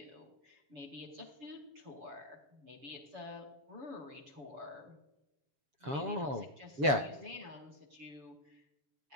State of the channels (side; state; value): left; late; 7.1 ms